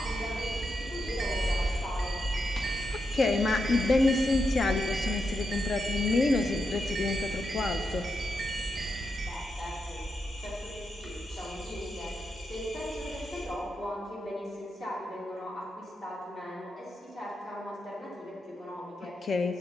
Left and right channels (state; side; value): normal; both; correlation 0.85